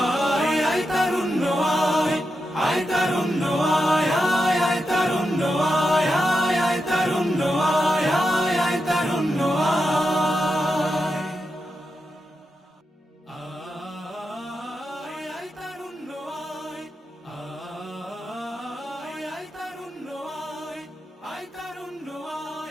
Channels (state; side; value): normal; both; correlation 0.87